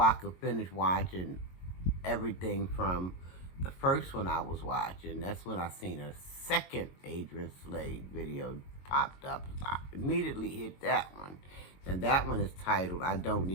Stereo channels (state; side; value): late; right; 22 ms